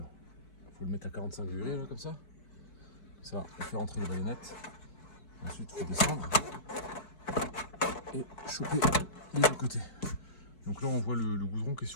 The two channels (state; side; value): late; right; 4.6 ms